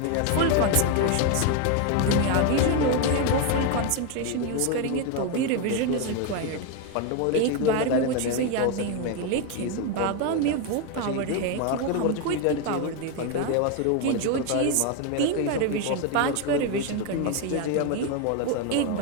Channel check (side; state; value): both; different; correlation 0.01